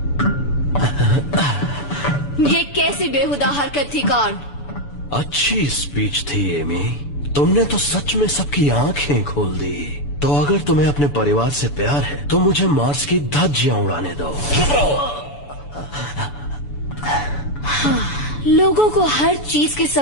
ये कैसी बेहुदा हरकत थी कार्ल? अच्छी स्पीच थी एमी, तुमने तो सच में सबकी आंखें खोल दी। तो अगर तुम्हें अपने परिवार से प्यार है तो मुझे मार्स की धज्जियां उड़ाने दो। लोगों को हर चीज की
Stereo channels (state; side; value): late; right; 6.9 ms